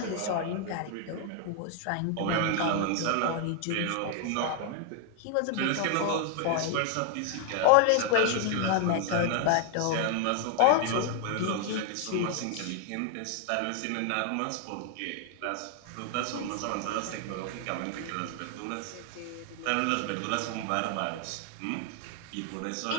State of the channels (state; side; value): different; both; correlation 0.00